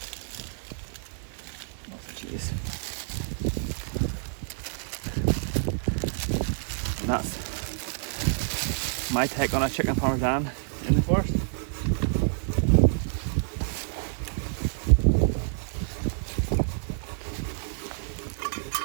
And that's my take on a chicken Parmesan in the forest.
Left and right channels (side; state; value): left; silent; digital silence